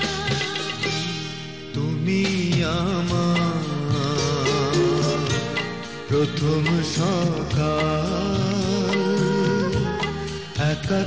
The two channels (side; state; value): both; identical; correlation 1.00